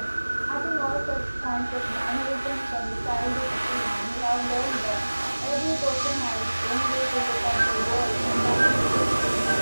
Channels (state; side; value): inverted; both; correlation -1.00